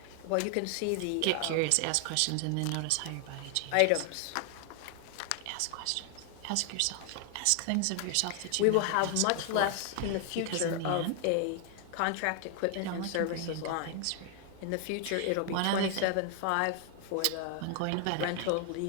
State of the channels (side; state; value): both; different; correlation 0.00